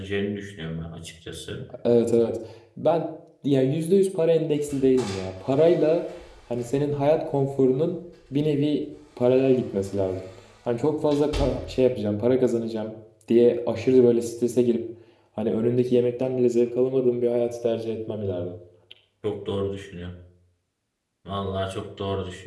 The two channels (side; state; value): both; identical; correlation 1.00